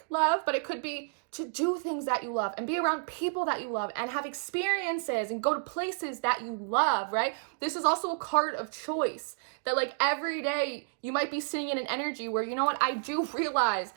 love, but it could be to do things that you love and be around people that you love and have experiences and go to places that you love, right? This is also a card of choice that, like, every day you might be sitting in an energy where, you know what, I do realize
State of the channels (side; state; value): left; silent; digital silence